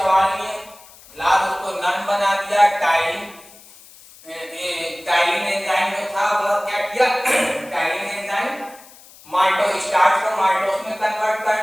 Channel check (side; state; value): left; noise; hiss, 22 dB below the sound